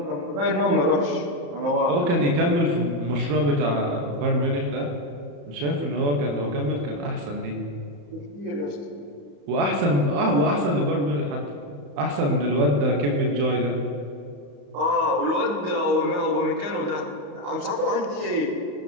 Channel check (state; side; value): late; left; 35 ms